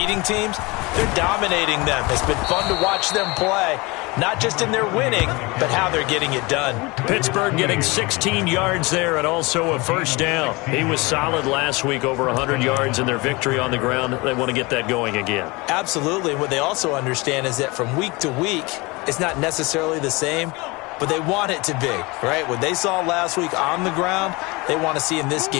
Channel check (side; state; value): right; quieter; 24.8 dB